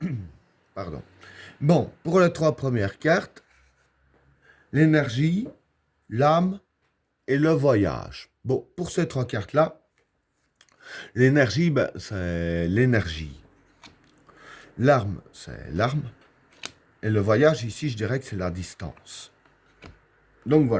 Pardon. Bon, pour les trois premières cartes, l'énergie, l'âme et le voyage. Bon, pour ces trois cartes-là, l'énergie, c'est l'énergie. L'arme, c'est l'arme. Et le voyage, ici, je dirais que c'est la distance. Donc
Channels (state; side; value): identical; both; correlation 1.00